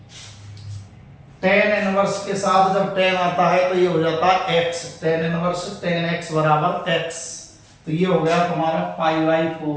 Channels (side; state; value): both; identical; correlation 1.00